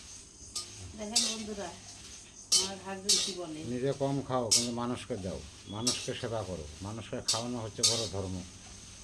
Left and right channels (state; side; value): identical; both; correlation 1.00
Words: দেখেন বন্ধুরা, আমার হাজবেন্ড কি বলে, নিজে কম খাও কিন্তু মানুষকে দাও, মানুষকে সেবা করো। মানুষকে খাওয়ানো হচ্ছে বড় ধর্ম।